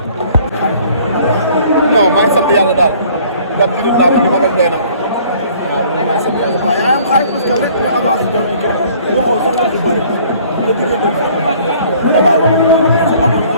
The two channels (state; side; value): inverted; both; correlation -0.55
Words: non maa ngi sant yàlla daal. ndax jullit laa woon li ma doon doy na ma. waaw maa ngi sant yàlla. waaw yaa am xaalis parce que rek nga avancé jëm ci kenn waxoo sax wax yu bëri nga diggante bi damaa la ko amul